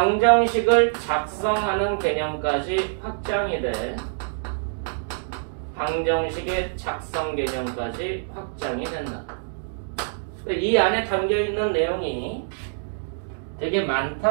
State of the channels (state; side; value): silent; left; digital silence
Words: 작성하는 개념까지 확장이 돼. 방정식의 작성 개념까지 확장이 된다. 이 안에 담겨있는 내용이 되게